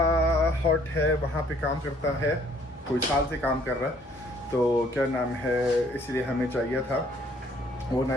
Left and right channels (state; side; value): normal; both; correlation 0.61